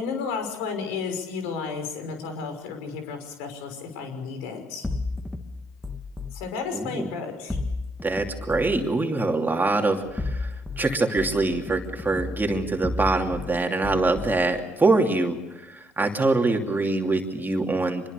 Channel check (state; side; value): normal; both; correlation 0.76